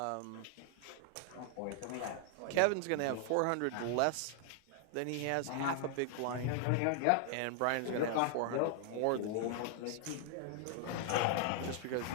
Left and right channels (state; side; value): different; both; correlation 0.00